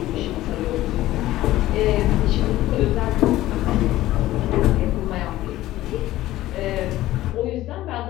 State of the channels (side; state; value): right; quieter; 15.5 dB